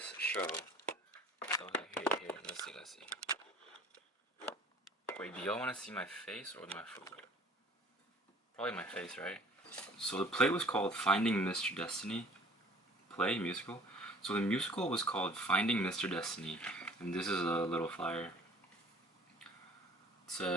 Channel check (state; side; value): normal; both; correlation 0.51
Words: show. So here, let's see. Wait, do y'all wanna see my face or my food? Probably my face, right? So the play was called Finding Mr. Destiny. Play, musical. So the musical was called Finding Mr. Destiny. And this is a little flyer. It